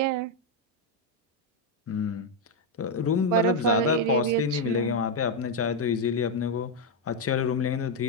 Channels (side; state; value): both; normal; correlation 0.02